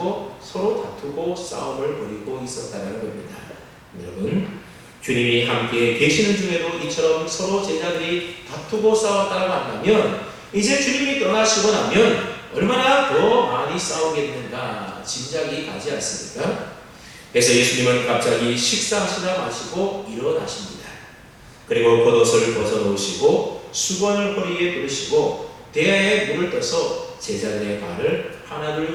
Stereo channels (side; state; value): both; identical; correlation 1.00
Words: 서로 다투고 싸움을 벌이고 있었다는 겁니다. 여러분, 주님이 함께 계시는 중에도 이처럼 서로 제자들이 다투고 싸웠다고 한다면 이제 주님이 떠나시고 나면 얼마나 더 많이 싸우겠는가 짐작이 가지 않습니까? 그래서 예수님은 갑자기 식사하시다 마시고 일어나십니다. 그리고 겉옷을 벗어놓으시고 수건을 허리에 두르시고 대야에 물을 떠서 제자들의 발을 하나둘